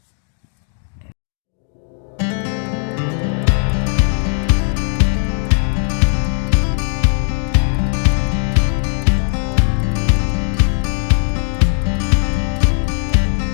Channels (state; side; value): silent; right; 68 dB below the other